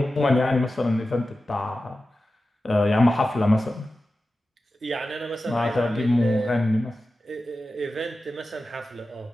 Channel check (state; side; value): normal; both; correlation 0.93